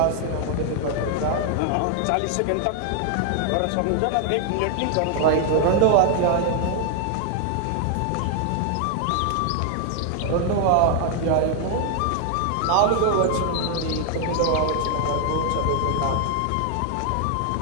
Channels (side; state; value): both; different; correlation 0.00